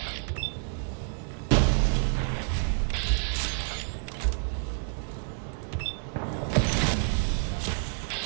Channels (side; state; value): left; silent; digital silence